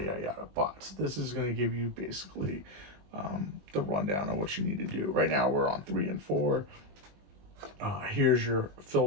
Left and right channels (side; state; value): left; late; 20 ms